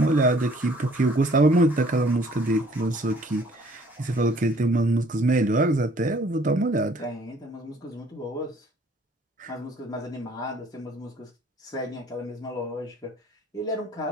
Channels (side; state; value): both; normal; correlation 0.58